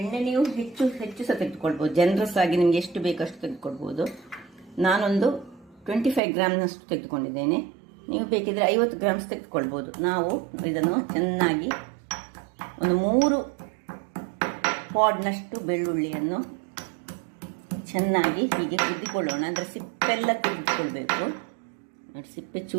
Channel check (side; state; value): left; drops out; at 6.2 s